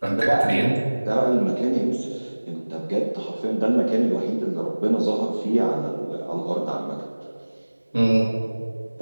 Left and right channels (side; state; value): both; inverted; correlation -1.00